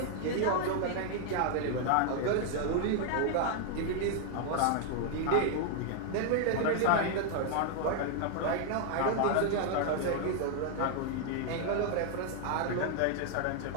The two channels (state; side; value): different; both; correlation 0.00